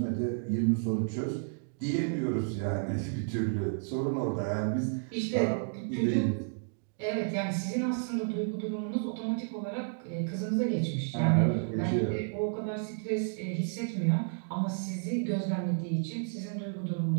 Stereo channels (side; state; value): left; silent; digital silence